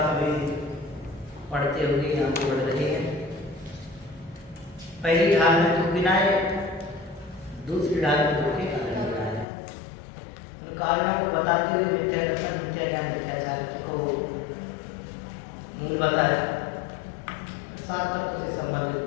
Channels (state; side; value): drops out; right; at 9.5 s